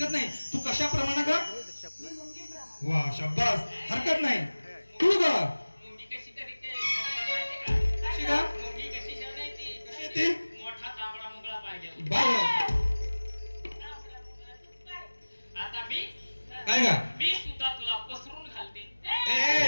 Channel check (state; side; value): inverted; both; correlation -1.00